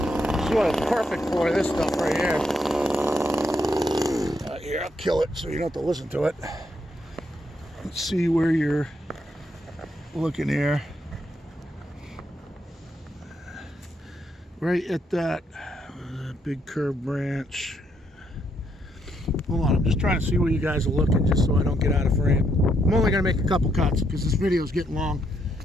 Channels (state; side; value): normal; both; correlation 0.76